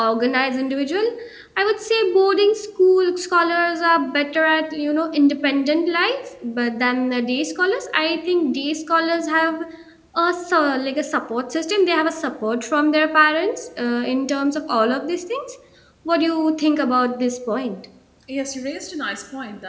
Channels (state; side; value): identical; both; correlation 1.00